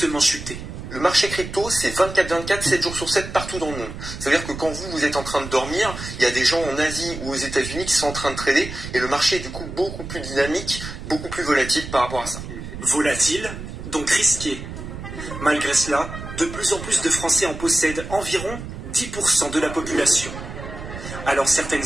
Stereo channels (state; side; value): noise; right; rumble, 10 dB below the sound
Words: chuté. Le marché crypto, c'est 24/24, 7 jours sur 7 partout dans le monde. C'est-à-dire que quand vous êtes en train de dormir, il y a des gens en Asie ou aux États-Unis qui sont en train de trader et le marché est du coup beaucoup plus dynamique, beaucoup plus volatile par rapport à ça. Volatile, donc risqué. Malgré cela, de plus en plus de Français en possèdent environ 10% de la population. Alors